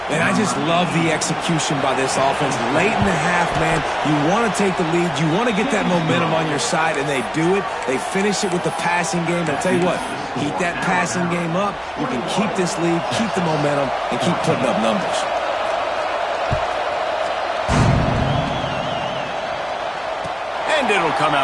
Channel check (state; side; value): identical; both; correlation 1.00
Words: And I just love the execution by this offense. Late in the half, man, you want to take the lead. You want to get that momentum on your side, and they do it. They finish it with the passing game. And I'll tell you what, keep that passing game up. You can keep this lead, keep the momentum, and keep putting up numbers. And it'll come